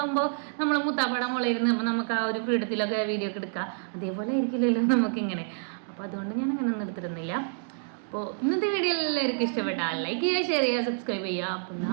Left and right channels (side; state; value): left; silent; digital silence